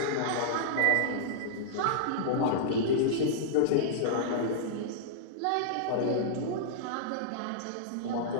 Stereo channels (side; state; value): both; different; correlation -0.02